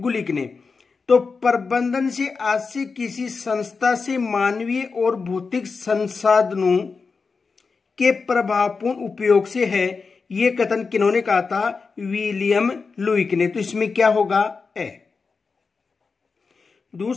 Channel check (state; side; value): quieter; right; 4.7 dB